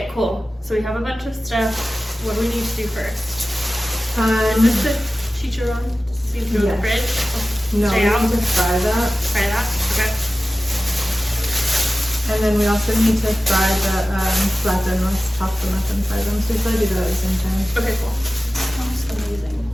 cool. So we have a bunch of stuff. What do we need to do first? Is this the chicharron? See if through the fridge? No, we need to fry that. Fry that? Okay. And then we also need to fry the plátanos, chop them up and fry them. So we probably do that at the same time. Okay, cool. Sounds amazing.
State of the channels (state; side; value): normal; both; correlation 0.96